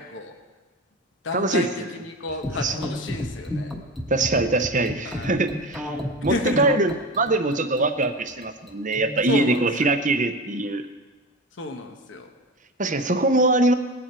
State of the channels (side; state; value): both; normal; correlation 0.27